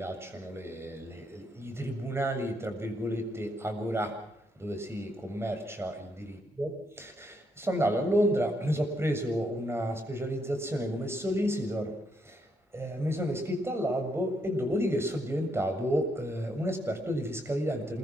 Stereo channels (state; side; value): normal; both; correlation 0.76